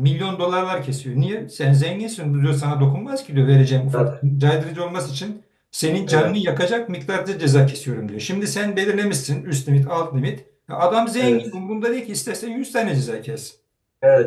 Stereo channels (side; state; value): both; identical; correlation 1.00